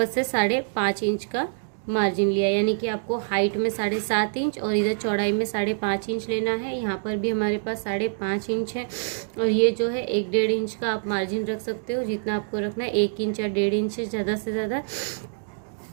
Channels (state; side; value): silent; left; digital silence